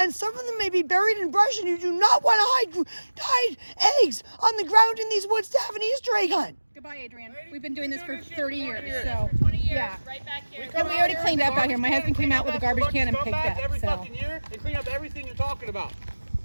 some of them may be buried in brush, and you do not want to hide eggs on the ground in these woods to have an Easter egg hunt. Goodbye, Adrienne. We've been doing this for 30 years, so, yeah. Right back here. And we already cleaned up out here. My husband came out with a garbage can and picked up, every fucking year and clean up everything you're talking about.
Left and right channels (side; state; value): both; inverted; correlation -1.00